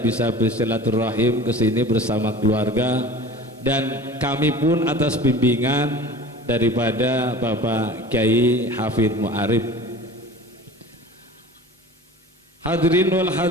bersilaturahim ke sini bersama keluarga, dan kami pun atas bimbingan daripada Bapak Kiai Hafidz Mu'arif. Hadirin wal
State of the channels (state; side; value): normal; both; correlation 0.40